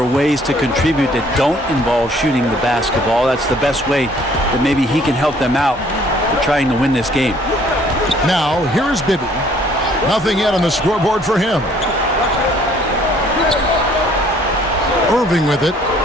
are ways to contribute that don't involve shooting the basketball. That's the best way that maybe he can help them out in trying to win this game. Now, here's Bibby. Nothing yet on the scoreboard for him. Irving with it,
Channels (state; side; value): normal; both; correlation 0.59